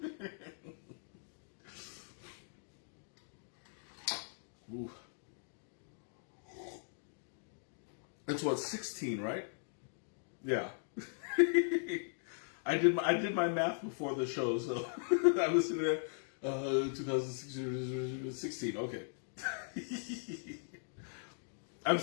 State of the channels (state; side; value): silent; right; digital silence